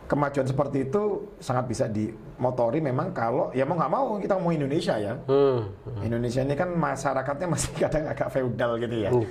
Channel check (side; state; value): both; identical; correlation 1.00